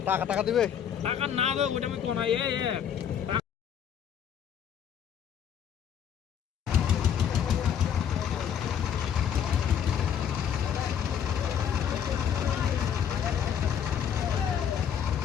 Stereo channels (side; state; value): right; quieter; 8.6 dB